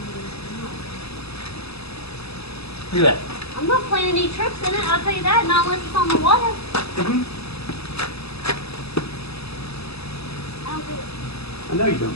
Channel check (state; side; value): late; right; 0.78 ms